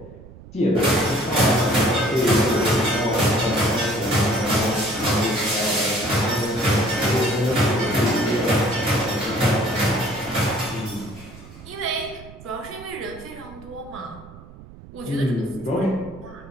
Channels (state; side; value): noise; right; rumble, 19 dB below the sound